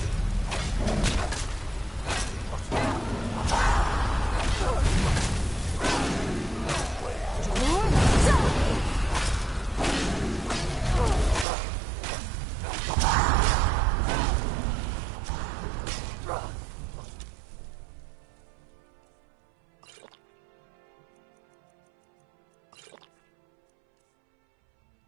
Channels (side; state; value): left; drops out; at 11.5 s